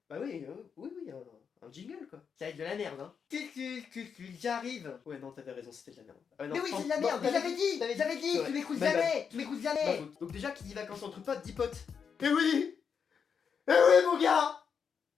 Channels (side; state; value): right; quieter; 6.6 dB